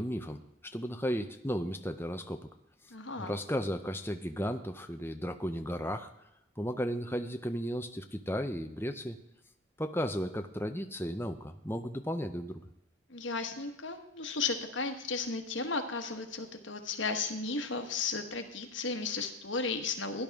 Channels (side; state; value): both; normal; correlation 0.50